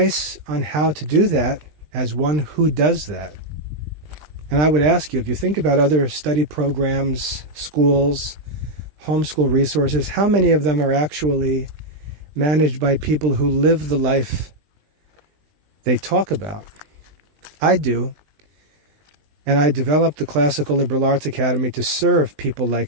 on how to do that, as one who does that, and I would ask you, if you think about other study programs, schools, homeschool resources, how many of them are actually managed by people who live the life they talk about? I do. And I developed the Classical Liberal Arts Academy to serve people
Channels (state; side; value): late; left; 20 ms